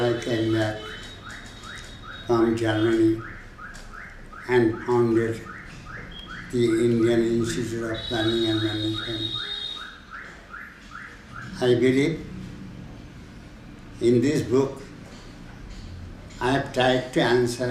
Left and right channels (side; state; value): both; identical; correlation 1.00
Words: came back from Germany and founded the Indian Institute of Planning and Management. I believe in this book I have tried to